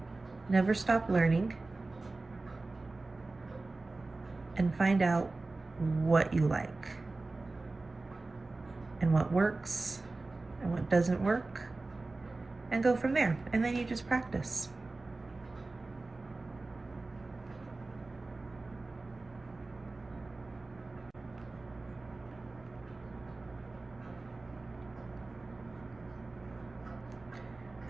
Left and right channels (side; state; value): left; quieter; 3.3 dB